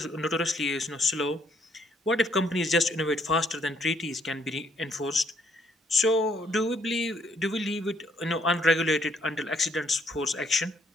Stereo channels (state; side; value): normal; both; correlation 0.68